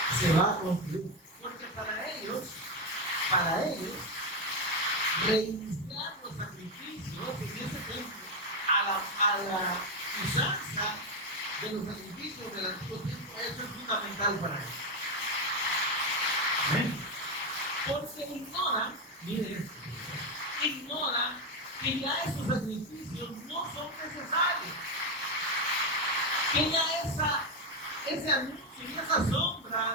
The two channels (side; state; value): both; normal; correlation 0.10